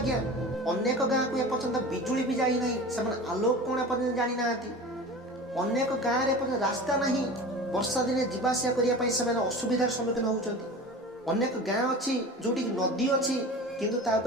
अनेक गाँ को एपर्यंत बिजुली भी जाई नहीं से आलोक कोण एपर्यंत जानी नाहती। अनेक गाँ रे एपर्यंत रास्ता नहीं वर्षा दिने जीवासिया करिया पई से असुविधार सम्मुखीन होउचंती। अनेक गाँ अछि जोटी नदी अछि किंतु ता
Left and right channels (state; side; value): normal; both; correlation 0.35